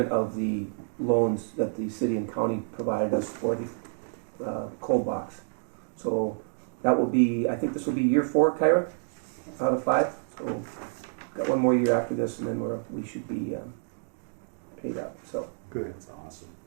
of the loans that the city and county provided us for the cold box. So that will be, I think this will be year 4, Kyra, out of 5. So got one more year after this, and then we should be paid out. So Good. That's awesome.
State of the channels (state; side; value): silent; left; digital silence